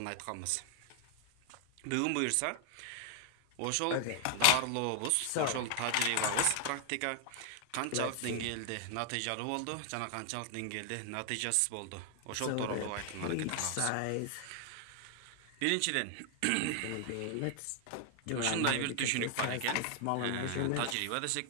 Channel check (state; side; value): different; both; correlation 0.00